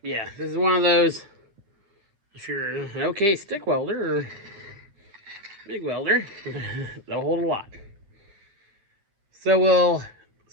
Yeah, this is one of those, if you're an okay stick welder or big welder, they'll hold a lot. So we'll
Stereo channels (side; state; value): left; late; 9.6 ms